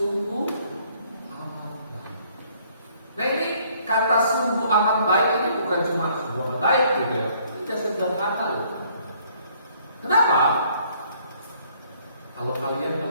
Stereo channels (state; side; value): inverted; both; correlation -0.63